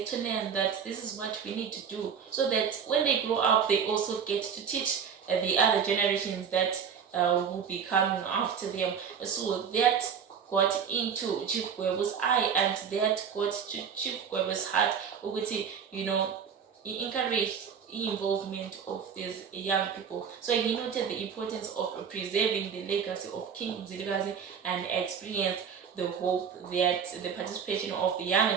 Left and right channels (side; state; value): left; quieter; 7.1 dB